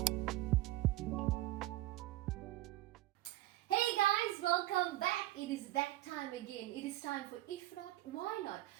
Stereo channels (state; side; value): quieter; left; 16.5 dB